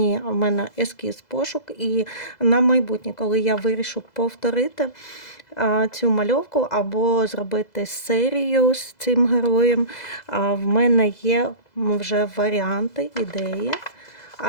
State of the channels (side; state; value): right; late; 2.0 ms